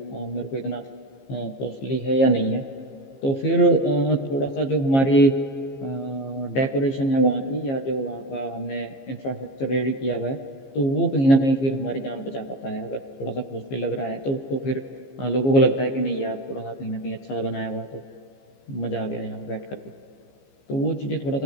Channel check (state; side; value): late; right; 15 ms